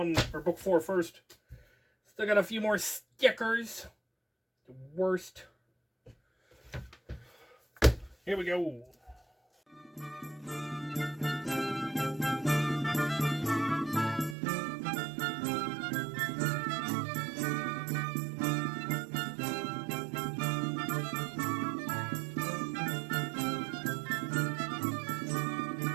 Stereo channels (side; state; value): left; drops out; at 14.4 s